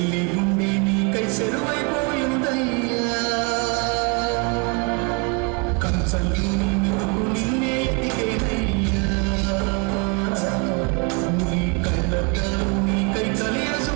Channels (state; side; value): quieter; left; 31.9 dB